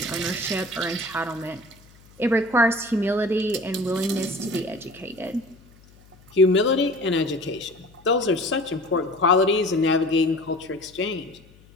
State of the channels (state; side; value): noise; left; hum, 26 dB below the sound